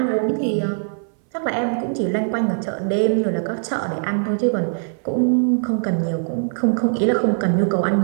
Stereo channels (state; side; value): silent; left; 61 dB below the other